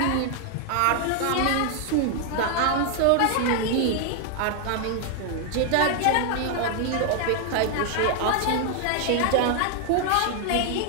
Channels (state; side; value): different; both; correlation 0.00